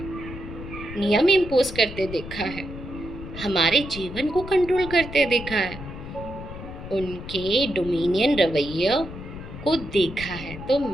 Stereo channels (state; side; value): noise; left; rumble, 11 dB below the sound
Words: नियम इम्पोज करते देखा है, हमारे जीवन को कंट्रोल करते देखा है, उनके डोमिनियन रवैया को देखा है। तो